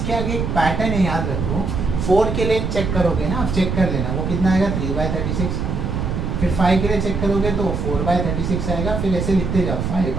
आगे एक पैटर्न है, याद रखो। 4 के लिए चेक करोगे ना, आप चेक कर लेना वो कितना आएगा 3/36। फिर 5 के लिए चेक करोगे तो 4/36 आएगा। फिर ऐसे लिखते जाओ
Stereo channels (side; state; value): right; noise; rumble, 2 dB below the sound